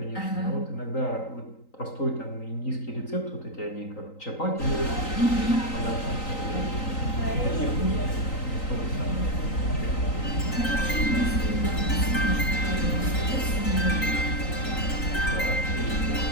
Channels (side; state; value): right; late; 3.9 ms